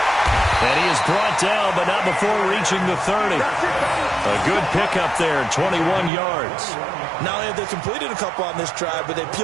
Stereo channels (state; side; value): drops out; left; at 6.1 s